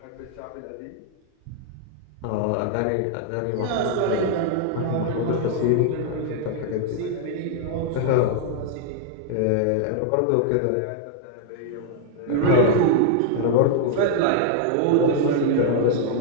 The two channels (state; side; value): different; both; correlation 0.00